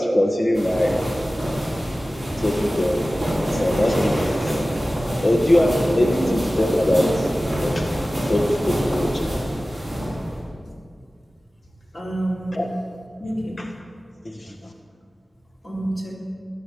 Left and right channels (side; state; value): both; normal; correlation 0.96